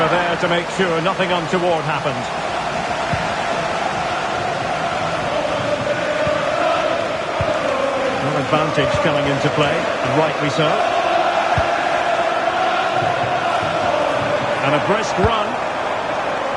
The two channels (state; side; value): identical; both; correlation 1.00